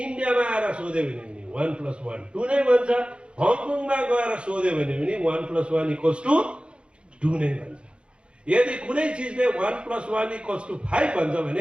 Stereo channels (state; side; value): late; left; 0.057 ms